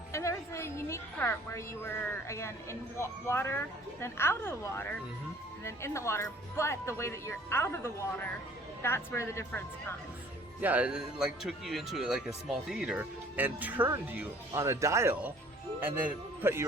And there was a unique part where you were, again, in water, then out of the water, and then in the water. But the way that you're out of the water, that's where the difference comes. Yeah, it like took you into like a small theater and turned you on a dial and then put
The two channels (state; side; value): normal; both; correlation 0.54